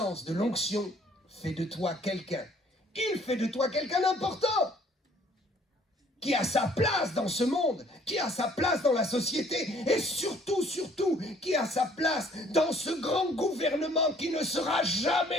de l'onction fait de toi quelqu'un. Il fait de toi quelqu'un d'important. qui a sa place dans ce monde, qui a sa place dans la société, et surtout, qui a sa place dans ce grand gouvernement qui ne sera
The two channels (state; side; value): normal; both; correlation 0.59